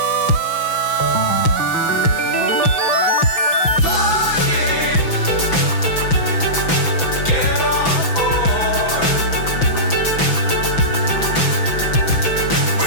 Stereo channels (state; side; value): late; right; 6.0 ms